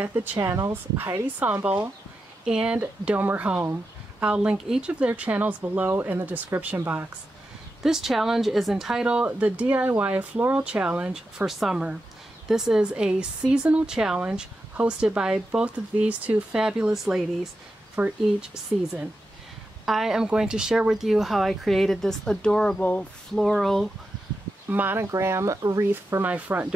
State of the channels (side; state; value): both; normal; correlation 0.89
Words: the channels Heidi Sonboul and Domer Home. I'll link each of their channels below in the description box. This challenge is entitled the DIY Floral Challenge for Summer. This is a seasonal challenge hosted by both of these two fabulous ladies for each season. I am going to share with you how I created this adorable floral monogram wreath for my front